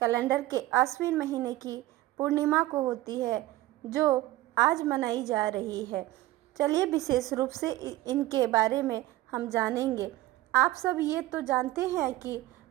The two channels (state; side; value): quieter; left; 17.0 dB